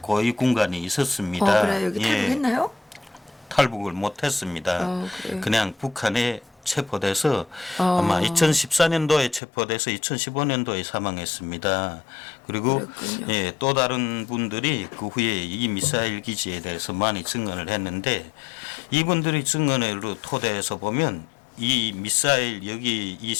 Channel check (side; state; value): right; drops out; at 9.4 s